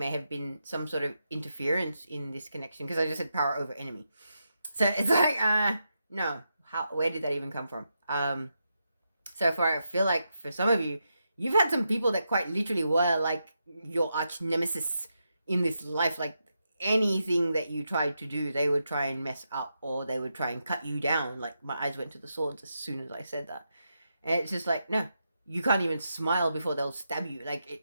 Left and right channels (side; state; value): both; inverted; correlation -0.85